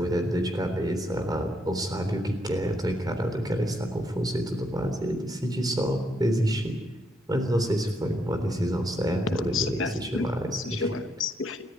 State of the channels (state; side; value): normal; both; correlation 0.76